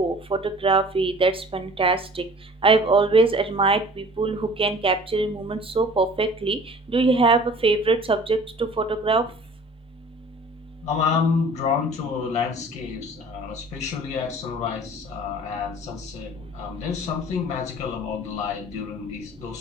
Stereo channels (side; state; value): both; normal; correlation 0.47